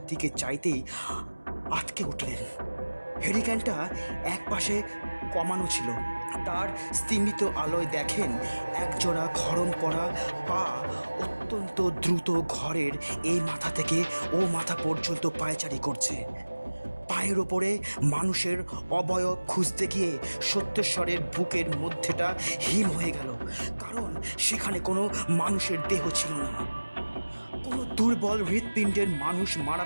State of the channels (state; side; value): inverted; both; correlation -1.00